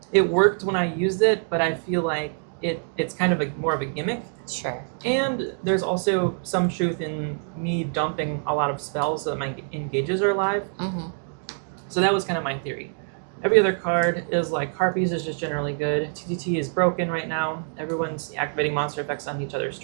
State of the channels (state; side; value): silent; left; 62 dB below the other